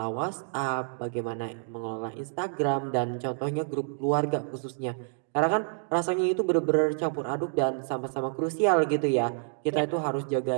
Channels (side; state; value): left; silent; digital silence